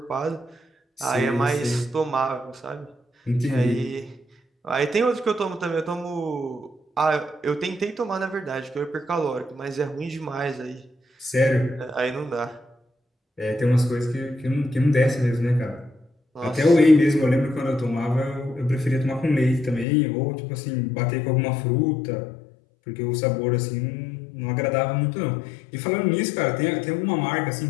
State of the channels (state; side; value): drops out; right; at 19.9 s